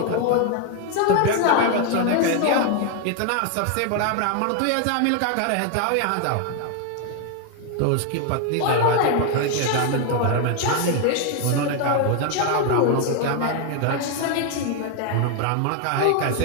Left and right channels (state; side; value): different; both; correlation 0.01